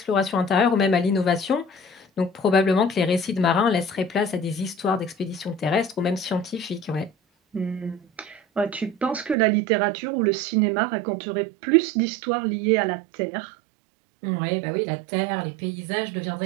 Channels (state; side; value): drops out; left; at 9.3 s